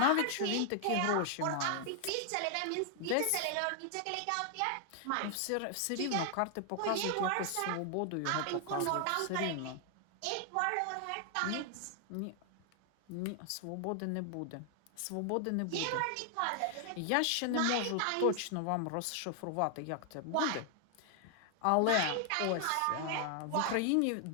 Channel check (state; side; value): different; both; correlation 0.00